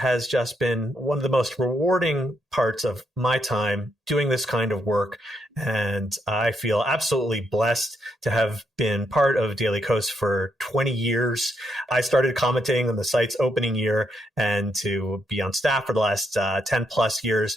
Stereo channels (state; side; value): normal; both; correlation 0.78